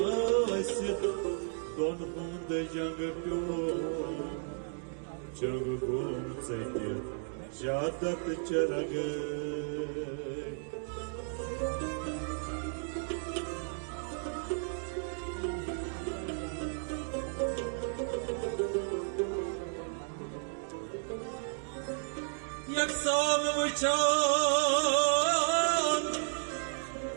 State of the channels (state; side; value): silent; left; 55 dB below the other